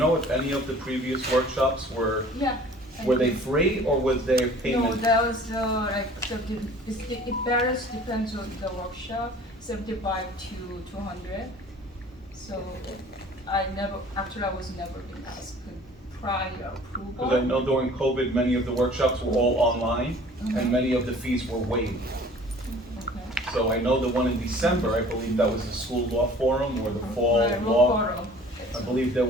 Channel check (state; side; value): normal; both; correlation 0.48